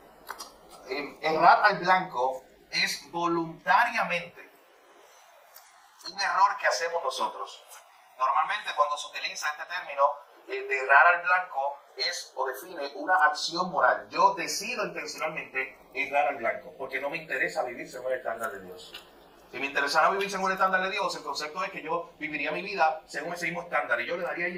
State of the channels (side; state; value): both; identical; correlation 1.00